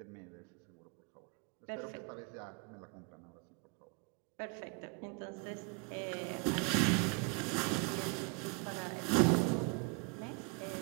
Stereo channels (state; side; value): quieter; left; 33.6 dB